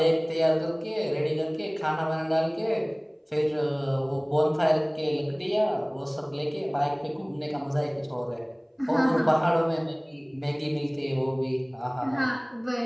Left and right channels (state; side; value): identical; both; correlation 1.00